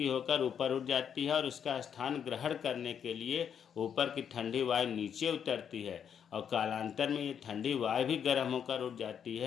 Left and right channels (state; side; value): quieter; right; 8.1 dB